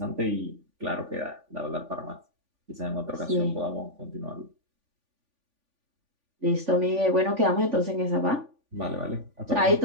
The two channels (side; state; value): left; late; 3.5 ms